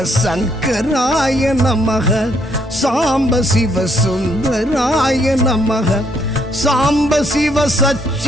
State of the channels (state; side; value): normal; both; correlation 0.71